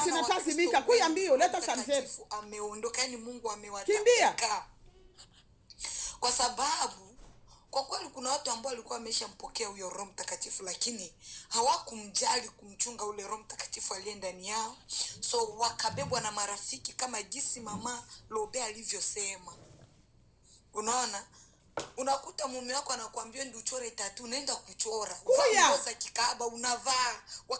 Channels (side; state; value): both; identical; correlation 1.00